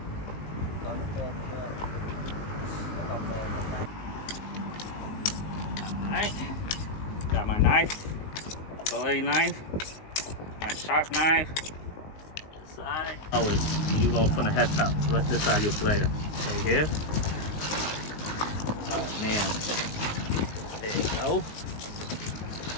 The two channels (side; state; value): right; late; 19 ms